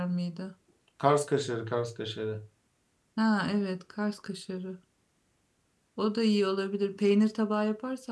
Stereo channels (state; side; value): identical; both; correlation 1.00